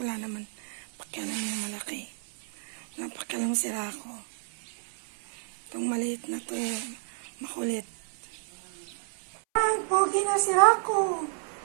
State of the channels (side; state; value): left; silent; 57 dB below the other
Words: naman. Pakialam niya malaki. Napakialam si Rako. Itong maliit na to, makulit. Ay, pogi na si Rako.